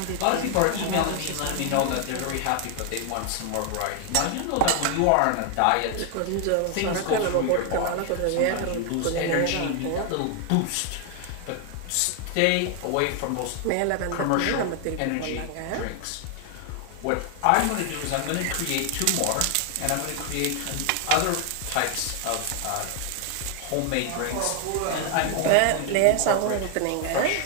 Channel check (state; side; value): different; both; correlation 0.00